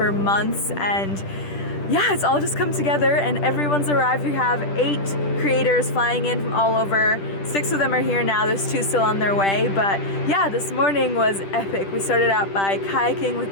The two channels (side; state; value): right; late; 10 ms